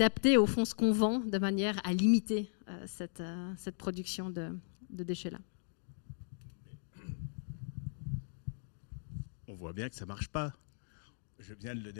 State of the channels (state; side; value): silent; right; digital silence